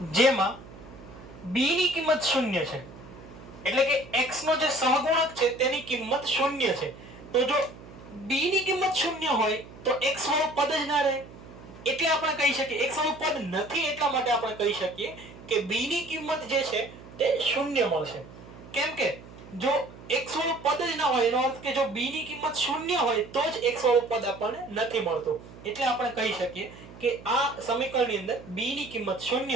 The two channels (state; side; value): noise; right; hum, 18 dB below the sound